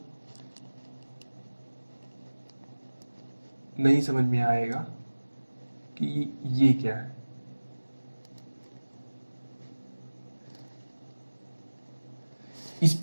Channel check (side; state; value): both; inverted; correlation -1.00